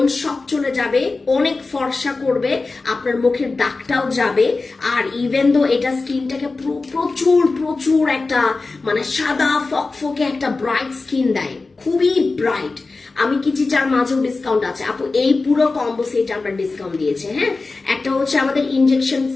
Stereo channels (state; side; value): quieter; right; 3.7 dB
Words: সব চলে যাবে, অনেক ফর্সা করবে, আপনার মুখের দাগটাও যাবে। আর ইভেন দো এটা স্কিনটাকে প্রচুর একটা সাদা ফকফকে একটা ব্রাইট স্কিন দেয়, খুবই ব্রাইট। আমি কি চিচার মাঝেও ডিসকাউন্ট আছে আপু, এই পুরো কম্বো সেট আমরা ডিসকাউন্ট দিয়েছি। হ্যাঁ, একটা হচ্ছে আমাদের ইনজেকশন